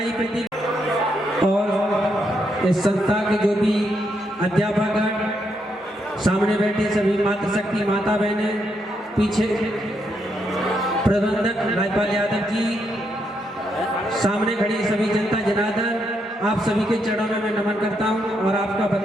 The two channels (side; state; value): both; normal; correlation 0.79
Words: प्रदीप और इस संस्था के जो भी अध्यापक सामने बैठे सभी मातृशक्ति माता बहनें, पीछे प्रबंधक राजपाल यादव जी, सामने खड़ी सभी जनता जनार्दन, आप सभी के चरणों में मैं नमन करता हूं और आपका